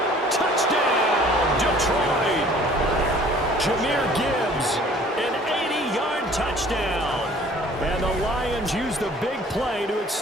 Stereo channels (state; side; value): normal; both; correlation 0.52